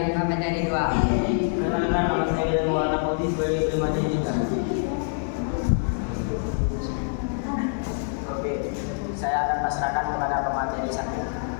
pemateri 2. Perkenalkan, nama saya William Maulana Putih sebagai pemateri 3. Oke, saya akan pasrahkan kepada pemateri 1.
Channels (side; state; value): right; silent; 61 dB below the other